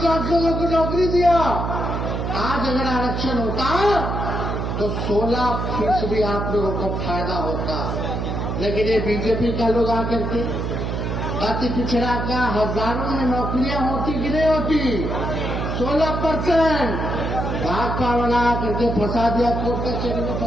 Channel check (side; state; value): right; noise; hum, 2 dB below the sound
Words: लाख लोगों को नौकरी दिया, आज अगर आरक्षण होता तो 16% आप लोगों को फायदा होता। लेकिन ये बीजेपी का लोग आकर के अति पिछड़ा का हजारों में नौकरियां होती कि नहीं होती? 16% भाजपा वाला करके फंसा दिया, कोर्ट कचहरी में